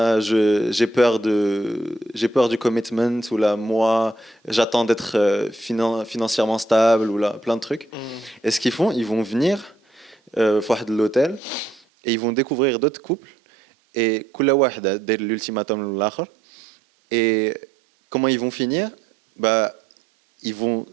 j'ai peur du commitment, ou là moi j'attends d'être financièrement stable, ou là plein de trucs. Et ce qu'ils font, ils vont venir de l'hôtel et ils vont découvrir d'autres couples et كل واحد داير l'ultimatum للآخر. Et comment ils vont finir? Bah ils vont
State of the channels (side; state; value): left; drops out; at 11.8 s